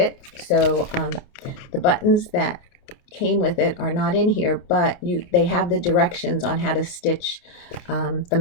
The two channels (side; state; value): right; late; 28 ms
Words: so the buttons that came with it are not in here, but they have the directions on how to stitch